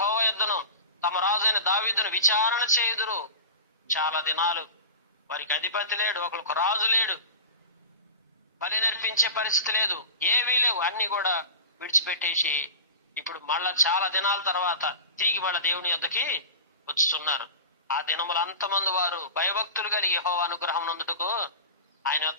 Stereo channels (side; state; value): both; inverted; correlation -0.31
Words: యొద్దను, తమ రాజైన దావీదును విచారణ చేయుదురు. చాలా దినాలు వారికి అధిపతి లేడు, ఒకరికి రాజు లేడు, బలి నర్పించే పరిస్థితి లేదు, ఏవీ లేవు. అన్ని కూడా విడిచిపెట్టేసి ఇప్పుడు మళ్ళా చాలా దినాల తర్వాత తిరిగి మళ్ళా దేవుని యొద్దకి వచ్చుతున్నారు. ఆ దినములు అంతమంది వారు భయభక్తులు కలిగి యెహోవా అనుగ్రహం నందుటకు ఆయన